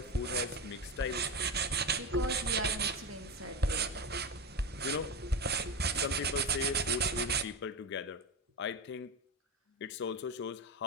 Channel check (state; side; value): normal; both; correlation 0.19